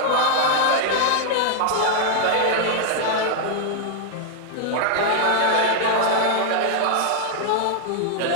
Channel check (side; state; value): both; different; correlation -0.01